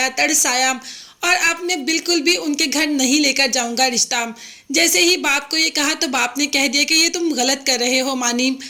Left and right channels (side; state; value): both; identical; correlation 1.00